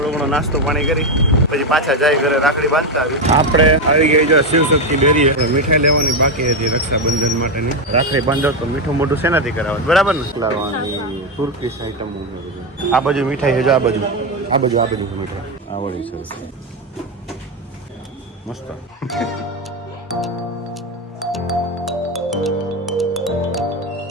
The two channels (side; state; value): both; normal; correlation 0.09